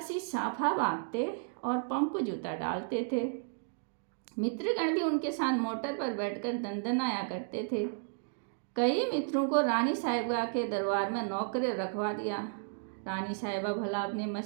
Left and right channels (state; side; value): silent; left; digital silence